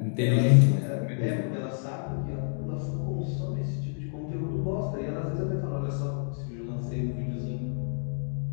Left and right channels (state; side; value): silent; right; digital silence